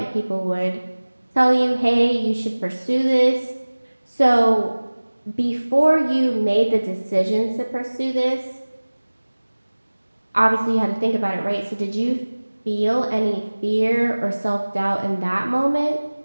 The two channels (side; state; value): both; inverted; correlation -1.00